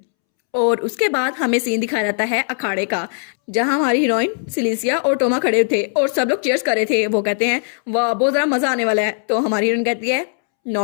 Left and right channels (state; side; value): silent; right; 67 dB below the other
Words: और उसके बाद हमें सीन दिखाया जाता है अखाड़े का, जहां हमारी हीरोइन सिलीसिया और टोमा खड़े थे और सब लोग चीयर्स कर रहे थे। वो कहते हैं वाह बहुत ज़रा मज़ा आने वाला है। तो हमारी हीरोइन कहती है